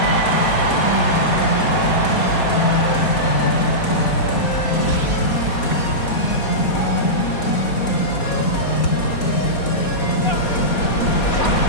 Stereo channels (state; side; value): late; right; 4.2 ms